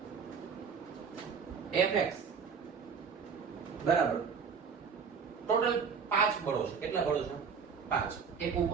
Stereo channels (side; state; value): left; quieter; 6.1 dB